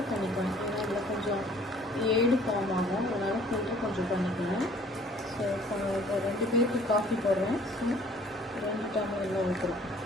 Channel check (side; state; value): both; normal; correlation 0.55